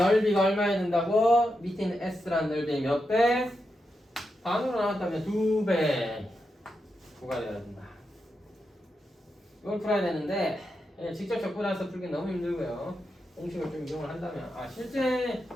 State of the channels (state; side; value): normal; both; correlation 0.86